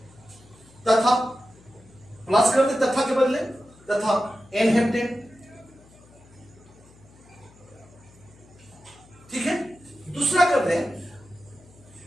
तथा प्लस कर दे तथा के बदले तथा एन हेप्टेन। ठीक है, दूसरा कर दे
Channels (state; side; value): noise; left; hum, 26 dB below the sound